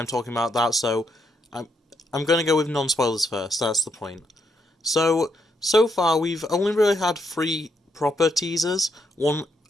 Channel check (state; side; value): normal; both; correlation 0.77